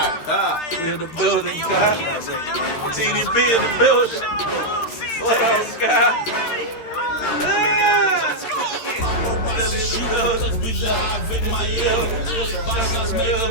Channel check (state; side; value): late; right; 13 ms